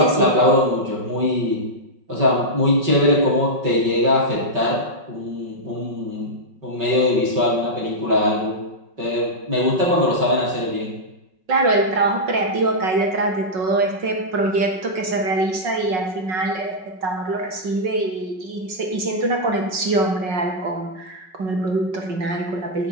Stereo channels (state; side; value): late; left; 5.5 ms